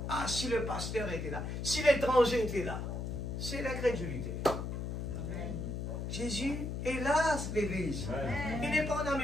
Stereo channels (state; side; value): noise; left; hum, 4 dB below the sound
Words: Ah, si le pasteur était là. Si l'étranger était là. c'est l'incrédulité. Jésus est là, l'église. Il n'est pas en